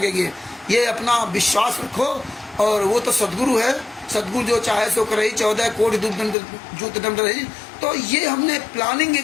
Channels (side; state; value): right; drops out; at 6.4 s